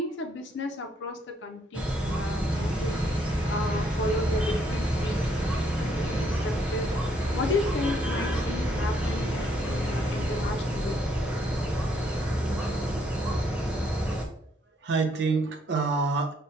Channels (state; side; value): normal; both; correlation 0.70